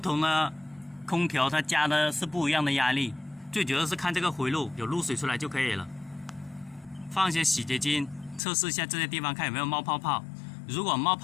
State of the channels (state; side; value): drops out; right; at 8.4 s